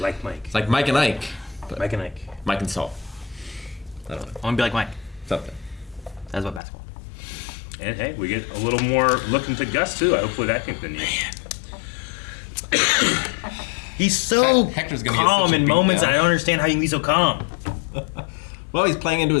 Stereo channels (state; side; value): drops out; right; at 6.6 s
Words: Mike. It's like Mike and Ike. But Mike and Ike. Mike and Saul. I don't know. I want to be like Mike. Something. That's about basketball. And hey, we get a little more look into Gus too. Hopefully that continues. He's so Hector's gonna get calm such a in beat moments. down. I don't understand how you can be so calm. Well, he's playing into